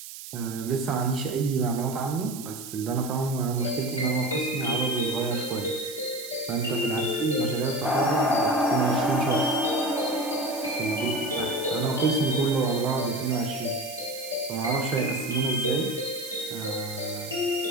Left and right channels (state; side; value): noise; right; hiss, 12 dB below the sound